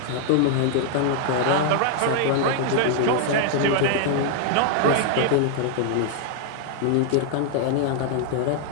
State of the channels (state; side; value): different; both; correlation 0.00